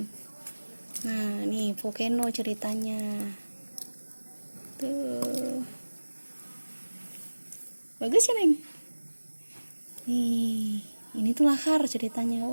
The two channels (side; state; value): both; inverted; correlation -1.00